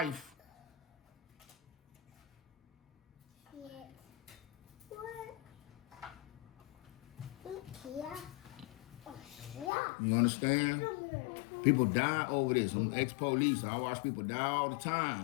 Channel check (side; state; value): right; drops out; at 9.7 s